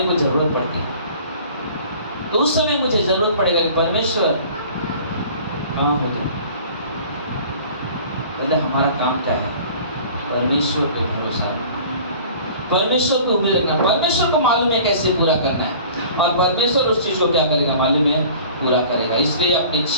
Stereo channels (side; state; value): both; inverted; correlation -0.46